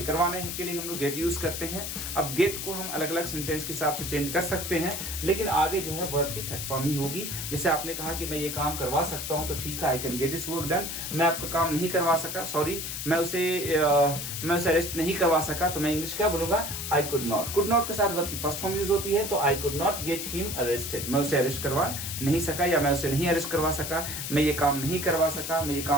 के लिए हम लोग गेट यूज करते हैं। अब गेट को हम अलग अलग सेंटेंस के हिसाब से चेंज कर सकते हैं, लेकिन आगे जो है वर्ब की थर्ड फॉर्म ही होगी। जैसे आपने कहा कि मैं ये काम करवा सकता हूं, तो ठीक है, I can get this work done. मैं आपका काम नहीं करवा सका, सॉरी मैं उसे अरेस्ट नहीं करवा सका, तो मैं इंग्लिश क्या बोलूंगा, I could not. Could not के साथ वर्ब की फर्स्ट फॉर्म यूज होती है, तो I could not get him arrested, मैं उसे अरेस्ट करवा नहीं सका, या मैं उसे नहीं अरेस्ट करवा सका, मैं ये काम नहीं करवा सका, मैं ये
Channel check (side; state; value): left; noise; hiss, 5 dB below the sound